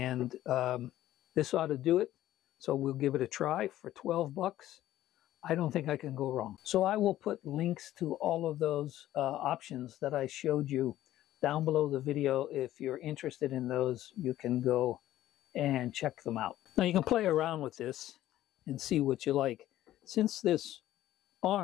this ought to do it. So we'll give it a try for 12 bucks. I don't think I can go wrong. So I will put links to all of those options that I showed you down below the video. If you're interested in those, you can go and check them out. Now you can play around with this and see what you like. Since this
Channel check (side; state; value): right; quieter; 13.8 dB